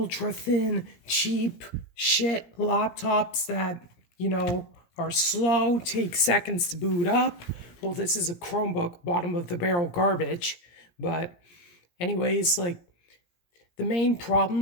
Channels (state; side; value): late; right; 17 ms